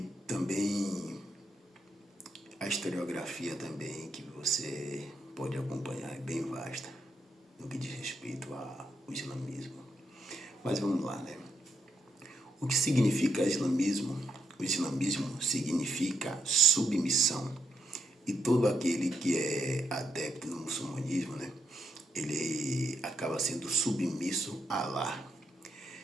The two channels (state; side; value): normal; both; correlation 0.80